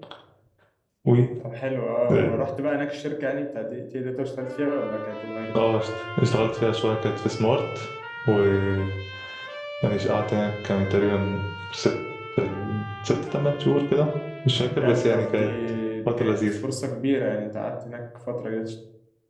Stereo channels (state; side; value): identical; both; correlation 1.00